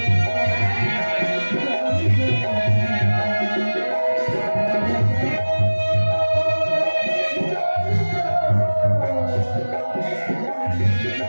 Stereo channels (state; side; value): inverted; both; correlation -1.00